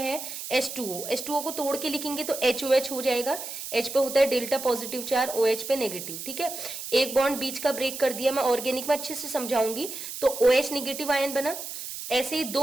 H2O को तोड़ के लिखेंगे तो HOH हो जाएगा। H पे होता है डेल्टा पॉजिटिव चार्ज, OH पे नेगेटिव। ठीक है, एक बॉन्ड बीच का ब्रेक कर दिया, मैं ऑर्गेनिक में अच्छे से समझाऊंगी। तो OH निगेटिव आयन बना, ऐसे ही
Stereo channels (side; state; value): right; noise; hiss, 8 dB below the sound